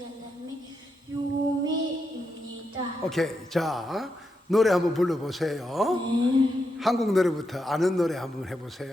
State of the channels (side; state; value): both; normal; correlation 0.84